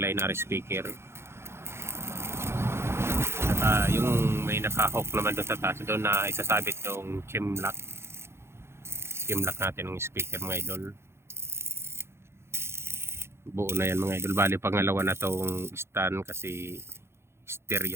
speaker. Yung may naka-hook naman doon sa taas doon na isasabit yung chim lock natin ng speaker mga idol. Buo na yan mga idol. Bali pangalawa na tong stand kasi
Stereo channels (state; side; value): late; left; 0.12 ms